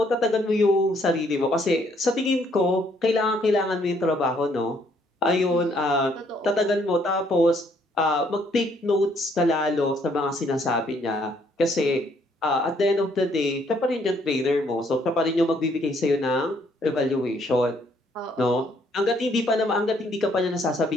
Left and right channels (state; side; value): normal; both; correlation 0.67